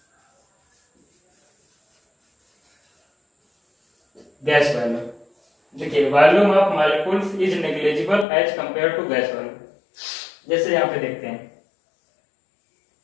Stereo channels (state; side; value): drops out; right; at 8.2 s